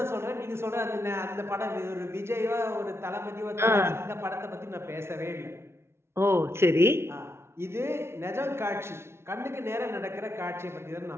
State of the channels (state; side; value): late; left; 0.12 ms